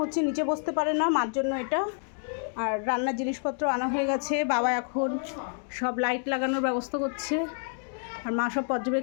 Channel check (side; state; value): right; silent; 59 dB below the other